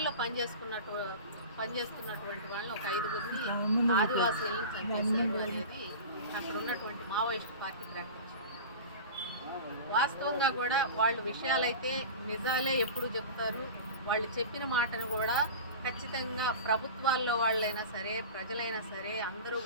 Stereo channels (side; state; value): both; inverted; correlation -0.33